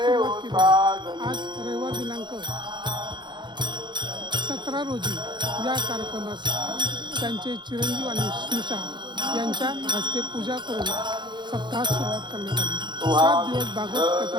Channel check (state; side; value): late; left; 0.22 ms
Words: केली. आज रविवार दिनांक 17 रोजी या कार्यक्रमास त्यांचे चिरंजीव आणि स्नुषा यांच्या हस्ते पूजा करून सप्ताहास सुरुवात करण्यात आली. 7 दिवस भागवत कथा